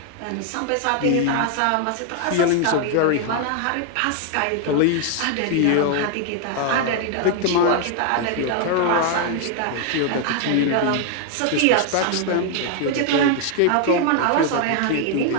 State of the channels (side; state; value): both; different; correlation 0.00